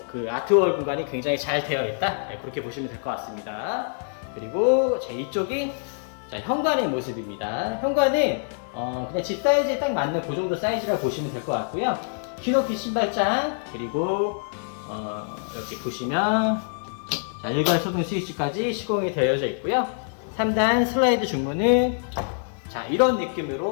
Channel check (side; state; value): right; silent; 59 dB below the other